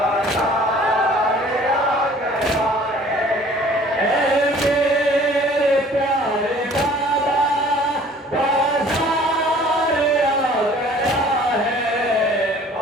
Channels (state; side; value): normal; both; correlation 0.52